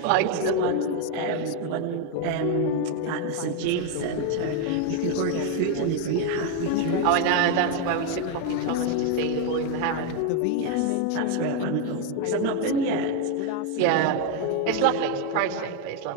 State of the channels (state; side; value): different; both; correlation 0.01